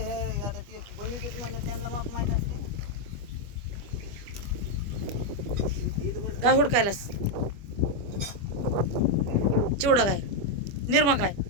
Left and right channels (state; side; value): late; left; 25 ms